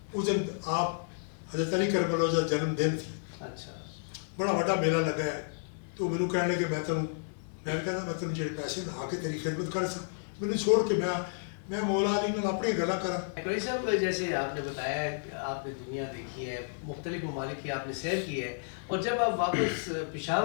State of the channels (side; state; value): right; silent; digital silence